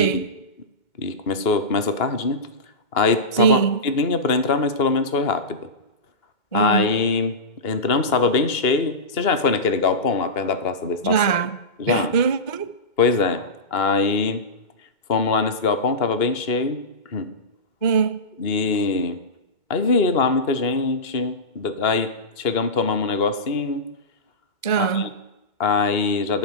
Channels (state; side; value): late; right; 2.2 ms